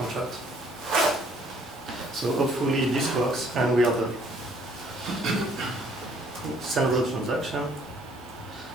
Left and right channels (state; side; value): normal; both; correlation 0.61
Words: So hopefully this works, and we have a central transaction.